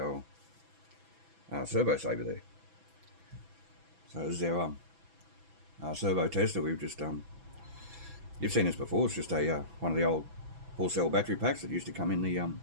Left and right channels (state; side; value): late; left; 6.0 ms